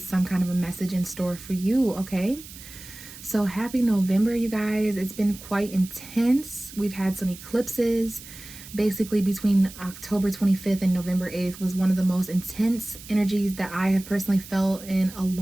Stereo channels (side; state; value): right; noise; hiss, 16 dB below the sound